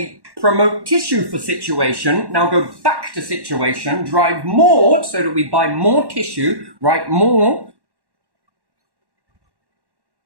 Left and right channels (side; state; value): left; late; 1.1 ms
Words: promote tissue for situation, now go back to situation, drive more so that we buy more tissue, write more.